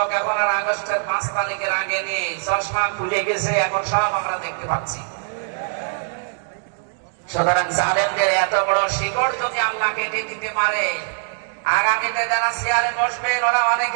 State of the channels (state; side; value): silent; left; digital silence